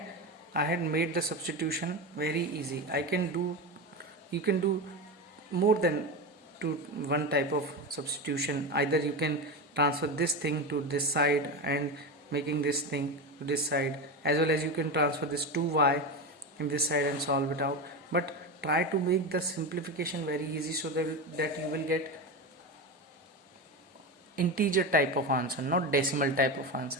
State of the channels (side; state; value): both; normal; correlation 0.19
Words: I had made the substitution very easy. You can do more than one type of substitution. Either you can transfer this thing to this side and making this thing to this side, as well as you can transfer this 2y in this side and solve it out. But try to make the simplification very easy so that you will get integer type of answer, not decimal type of